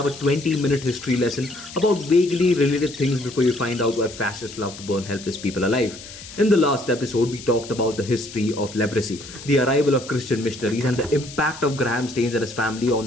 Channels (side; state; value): left; noise; hiss, 15 dB below the sound